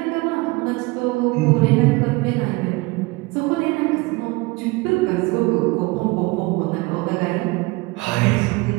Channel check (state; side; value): quieter; left; 24.1 dB